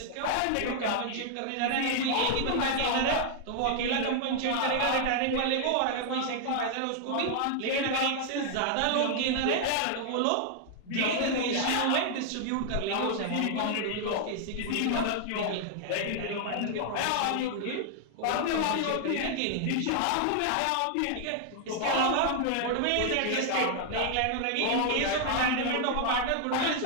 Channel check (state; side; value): different; both; correlation 0.00